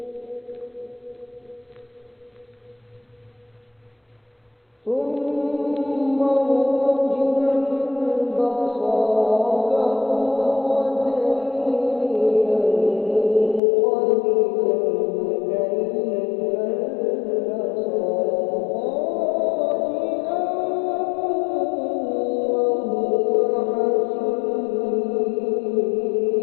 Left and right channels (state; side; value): drops out; right; at 13.6 s